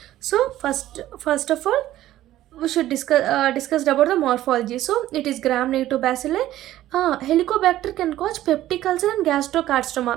So first of all, we should discuss about the morphology. So it is gram negative bacilli. Helicobacter can cause peptic ulcer and gastrocarcinoma.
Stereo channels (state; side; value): quieter; left; 14.0 dB